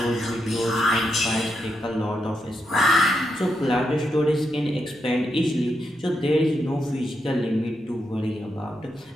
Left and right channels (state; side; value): normal; both; correlation 0.83